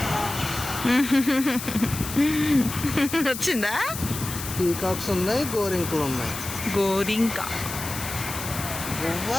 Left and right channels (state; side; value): noise; left; hiss, 8 dB below the sound